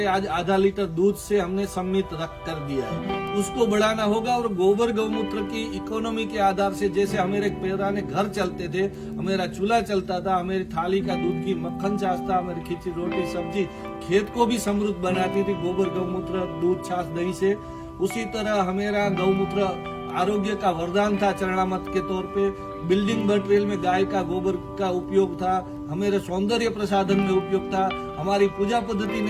आज आधा लीटर दूध से हमने सम्मित रख कर दिया है। उसको बढ़ाना होगा और गोबर गौमूत्र की इकोनॉमी के आधार से, जैसे हमारे पुराने घर चलते थे, हमारा चूल्हा चलता था, हमारी थाली का दूध की मक्खन छाछ था, हमारी खिचड़ी रोटी सब्जी खेत को भी समृद्ध बनाती थी गोबर गौमूत्र दूध छाछ दही से। उसी तरह हमारा गौमूत्र आरोग्य का वरदान था, चरणामत के तौर पे। बिल्डिंग मटेरियल में गाय का गोबर का उपयोग था, हमारे सौंदर्य प्रसाधन में उपयोग था, हमारी पूजा पद्धति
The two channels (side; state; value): both; identical; correlation 1.00